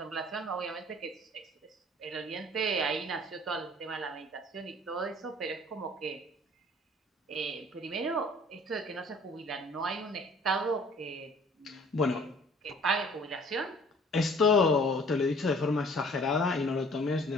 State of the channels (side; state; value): both; normal; correlation 0.53